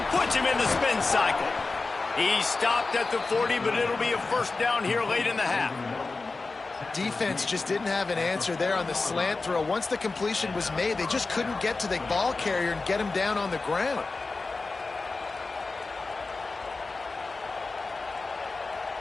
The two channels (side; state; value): right; quieter; 3.8 dB